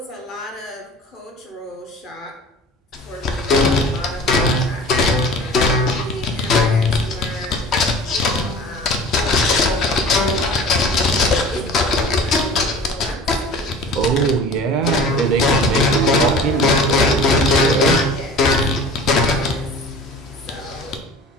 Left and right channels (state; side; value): normal; both; correlation 0.41